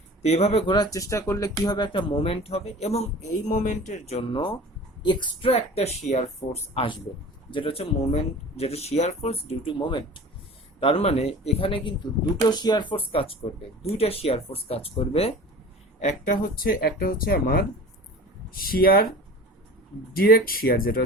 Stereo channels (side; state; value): both; normal; correlation 0.38